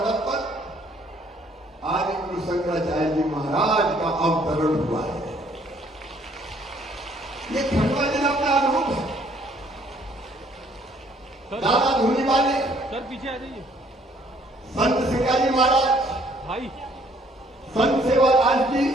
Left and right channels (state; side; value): normal; both; correlation 0.62